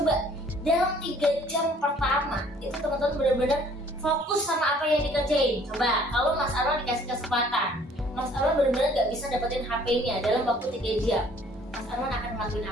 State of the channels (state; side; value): normal; both; correlation 0.57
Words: dalam 3 jam pertama itu teman-teman benar-benar fokus sama apa yang dikerjain. Coba kalau Mas Arwan dikasih kesempatan, Mas Arwan benar-benar nggak bisa dapetin HP-nya dalam waktu 3 jam. Mas Arwan akan ngelakuin